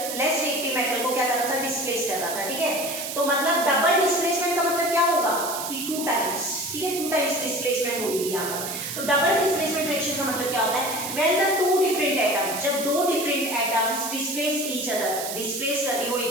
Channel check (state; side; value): noise; right; hiss, 6 dB below the sound